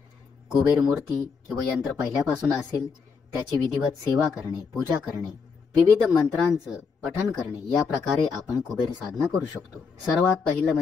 कुबेर मूर्ती किंवा यंत्र पहिल्यापासून असेल त्याची विधिवत सेवा करणे, पूजा करणे, विविध मंत्रांचं पठण करणे, या प्रकारे आपण कुबेर साधना करू शकतो। सर्वात पहिलं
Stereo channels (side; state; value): right; quieter; 5.4 dB